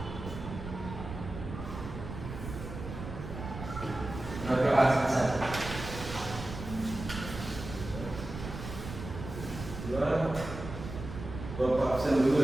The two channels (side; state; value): right; noise; rumble, 9 dB below the sound